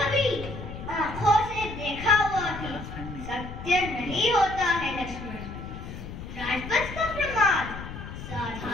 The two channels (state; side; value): noise; left; rumble, 10 dB below the sound